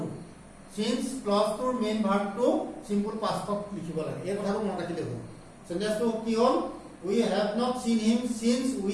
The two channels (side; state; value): both; identical; correlation 1.00